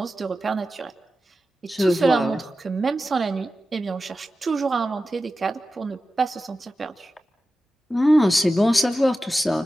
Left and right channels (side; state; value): both; normal; correlation 0.93